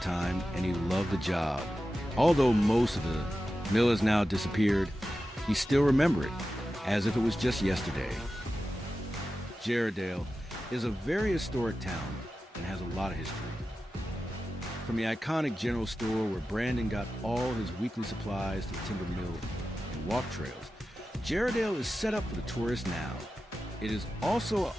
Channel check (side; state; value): both; normal; correlation 0.93